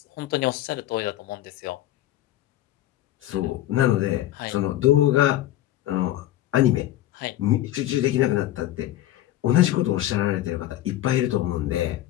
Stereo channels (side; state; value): right; quieter; 14.0 dB